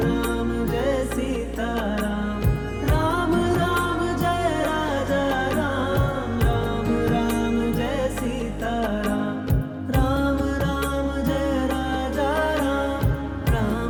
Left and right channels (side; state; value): both; identical; correlation 1.00